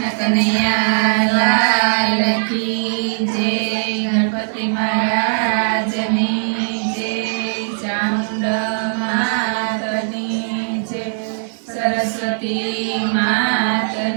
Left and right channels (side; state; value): left; silent; digital silence